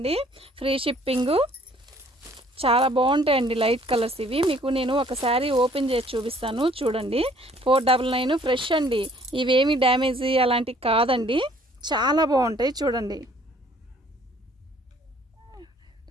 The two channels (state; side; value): normal; both; correlation 0.58